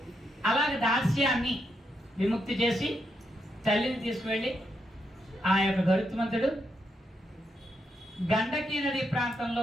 అలాగే దాస్యాన్ని విముక్తి చేసి తల్లిని తీసుకువెళ్ళి ఆ యొక్క గరుత్మంతుడు గండకీ నది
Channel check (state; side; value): normal; both; correlation 0.81